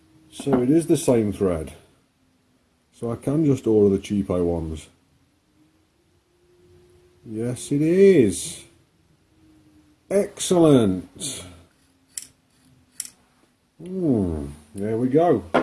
So it is the same thread. So I can just order the cheapo ones. Yes, it is. Excellent. There we go.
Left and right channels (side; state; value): both; identical; correlation 1.00